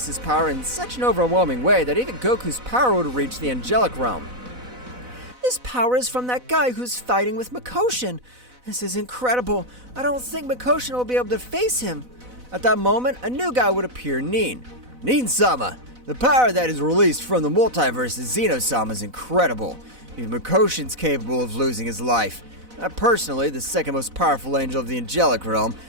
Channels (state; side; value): late; left; 4.0 ms